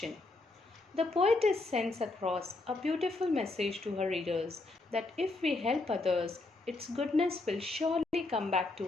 The poetess sends across a beautiful message to her readers that if we help others, its goodness will surely come back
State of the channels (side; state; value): right; quieter; 3.2 dB